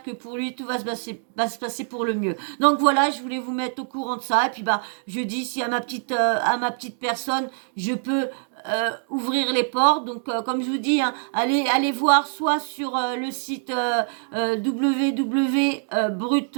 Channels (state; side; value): silent; left; 62 dB below the other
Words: que pour lui, tout va se passer pour le mieux. Donc, voilà, je voulais vous mettre au courant de ça. Et puis, bah, je dis, si à ma petite personne, je peux ouvrir les portes. Donc, comme je vous dis, hein, allez voir soit sur le site www